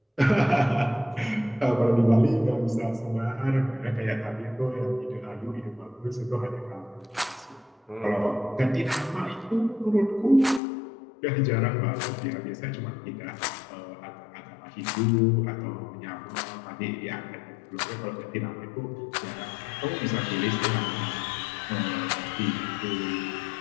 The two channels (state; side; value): drops out; right; at 10.6 s